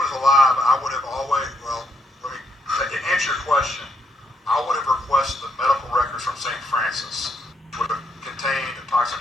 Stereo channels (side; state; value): both; normal; correlation 0.76